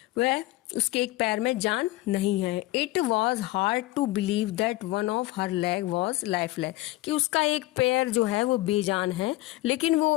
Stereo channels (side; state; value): right; quieter; 17.9 dB